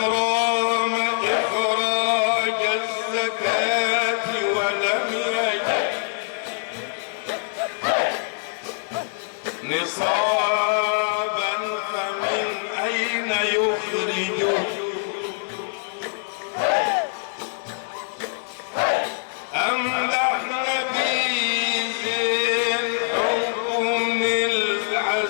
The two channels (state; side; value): silent; right; digital silence